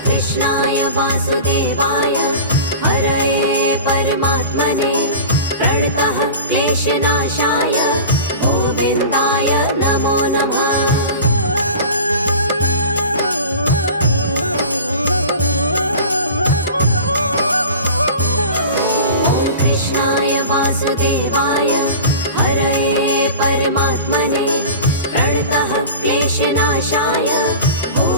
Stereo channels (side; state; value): both; inverted; correlation -0.36